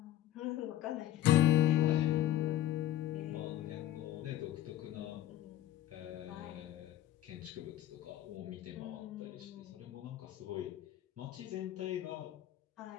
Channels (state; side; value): quieter; right; 12.9 dB